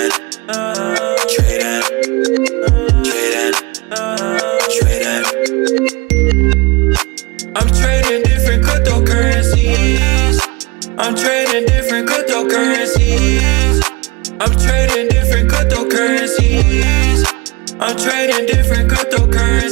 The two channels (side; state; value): left; quieter; 25.9 dB